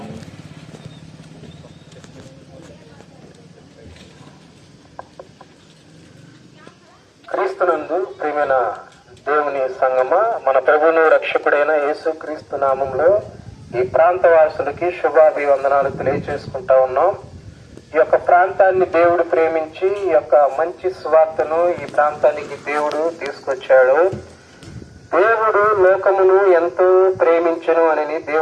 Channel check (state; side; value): identical; both; correlation 1.00